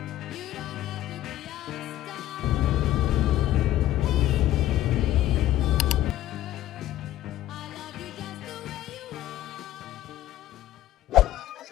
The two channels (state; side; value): quieter; right; 13.6 dB